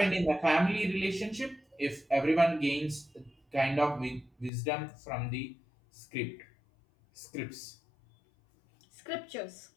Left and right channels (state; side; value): drops out; right; at 4.5 s